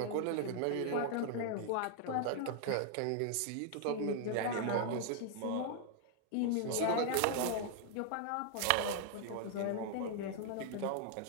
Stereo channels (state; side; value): different; both; correlation 0.00